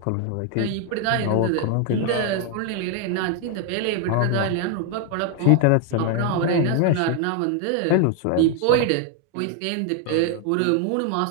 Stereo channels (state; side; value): different; both; correlation 0.01